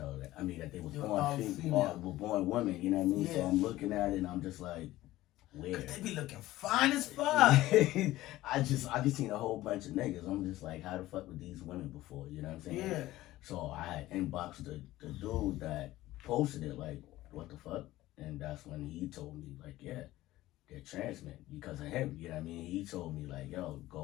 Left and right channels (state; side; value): quieter; right; 16.3 dB